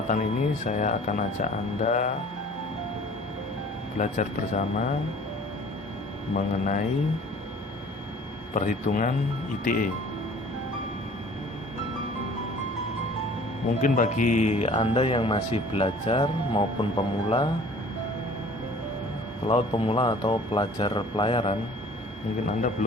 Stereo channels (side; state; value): both; normal; correlation 0.50